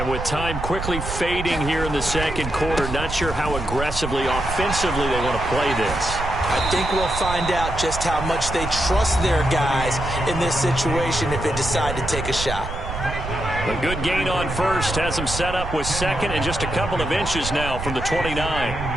with time quickly fading here in the second quarter, not sure how aggressively, offensively they want to play this. I think we'll find out just how much they trust their guys in this situation if they decide to take a shot. A good gain on first has them set up with 2nd and just a couple of inches now from the 29.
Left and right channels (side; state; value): right; noise; rumble, 7 dB below the sound